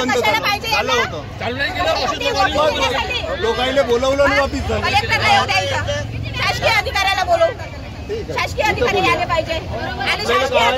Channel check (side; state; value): both; identical; correlation 1.00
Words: झालं होतं, चालू नाही केलं। लोकांना बोलवलं आणि वापिस झालं। शासकीय अधिकाऱ्याला बोलवू, शासकीय अधिकारी आले पाहिजे आणि